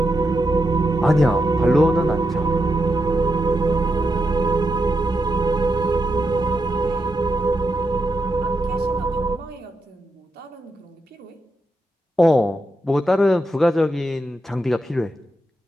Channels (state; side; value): normal; both; correlation 0.85